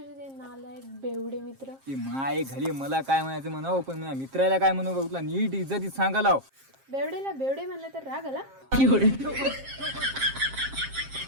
ते नालायक बेवडे मित्र. की माय घाली मला काय म्हणायचं म्हणावं, पण माझ्या मित्राला काय म्हणू बघ, नीट इज्जतीत सांगायला. बेवडेला बेवडे म्हणलं तर राग आला.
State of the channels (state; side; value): late; left; 7.5 ms